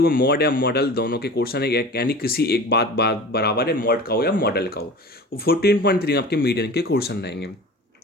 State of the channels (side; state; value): both; normal; correlation 0.38